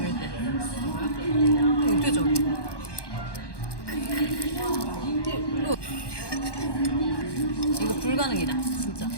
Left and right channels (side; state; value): right; late; 1.1 ms